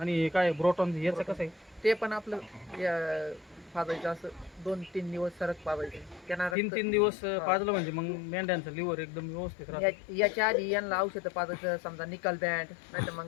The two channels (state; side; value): drops out; right; at 6.6 s